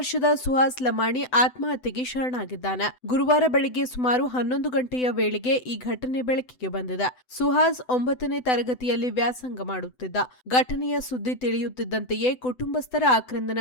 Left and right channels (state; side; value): late; right; 7.9 ms